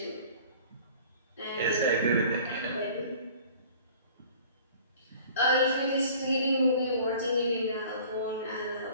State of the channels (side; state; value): both; inverted; correlation -0.48